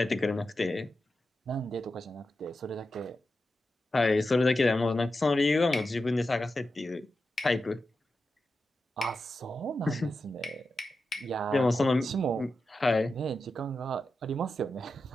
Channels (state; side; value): normal; both; correlation 0.90